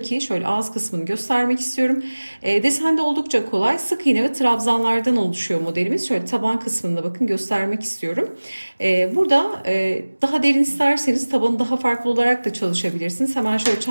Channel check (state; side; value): inverted; both; correlation -1.00